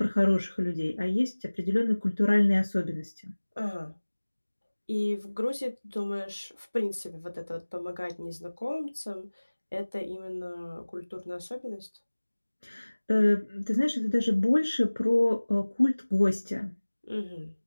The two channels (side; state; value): both; inverted; correlation -1.00